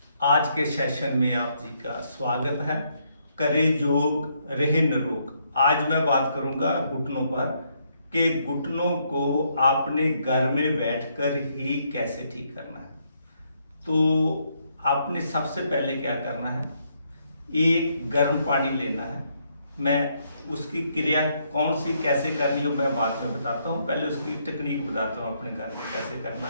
आज के सेशन में आप जी का स्वागत है। करे योग रहे निरोग। आज मैं बात करूंगा घुटनों पर कि घुटनों को आपने घर में बैठकर ही कैसे ठीक करना है। तो आपने सबसे पहले क्या करना है, एक गर्म पानी लेना है। मैं उसकी क्रिया कौन सी कैसे करनी हो मैं बाद में बताता हूँ, पहले उसकी टेक्निक बताता हूँ अपने घर में कैसे करना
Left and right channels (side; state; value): both; inverted; correlation -0.74